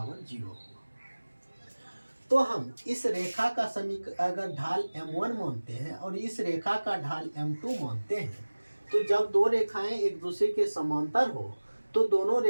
0 होगा। तो हम इस रेखा का अगर ढाल m1 मानते हैं और इस रेखा का ढाल m2 मानते हैं, तो जब दो रेखाएं एक दूसरे के समांतर हो तो दोनों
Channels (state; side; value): inverted; both; correlation -1.00